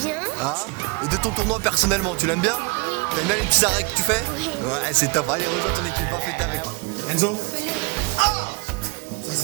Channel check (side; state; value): left; quieter; 28.0 dB